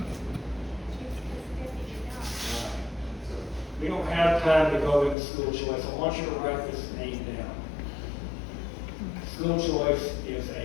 We don't have time to go into school choice. I want you to write this name down. School choice is a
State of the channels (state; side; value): drops out; right; at 5.2 s